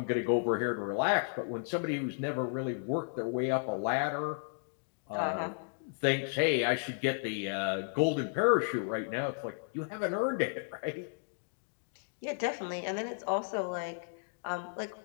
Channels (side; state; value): right; silent; digital silence